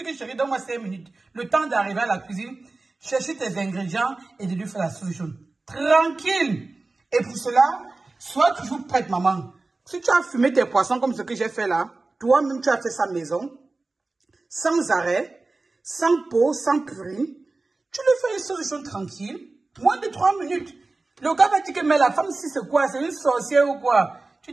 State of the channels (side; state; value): left; quieter; 3.4 dB